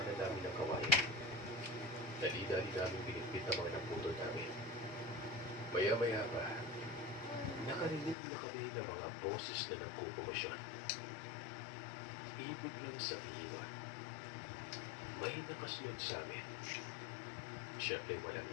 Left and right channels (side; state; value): right; drops out; at 8.2 s